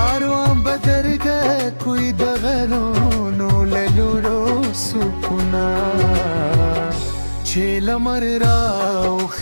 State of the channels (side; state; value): both; inverted; correlation -1.00